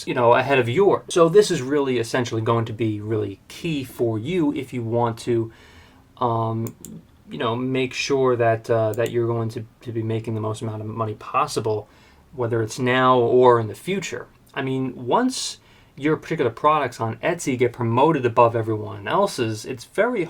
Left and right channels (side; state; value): both; identical; correlation 1.00